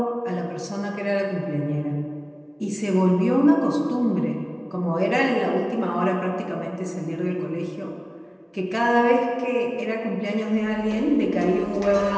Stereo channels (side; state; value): both; identical; correlation 1.00